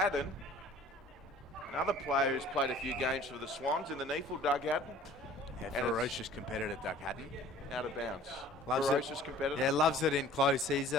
Another player who's played a few games for the Swans in the NEAFl, Doug Haddon. Yeah, ferocious competitor, Doug Haddon. Out of bounds. Loves ferocious it. competitor. Yeah, loves it in close. He's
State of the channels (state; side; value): normal; both; correlation 0.49